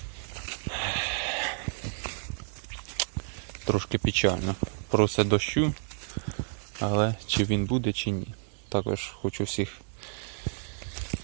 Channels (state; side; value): silent; left; 58 dB below the other